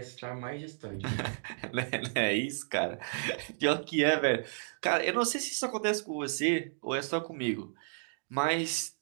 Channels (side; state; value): left; silent; digital silence